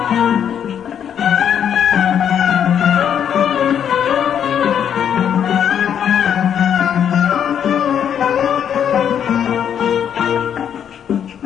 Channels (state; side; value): quieter; right; 8.8 dB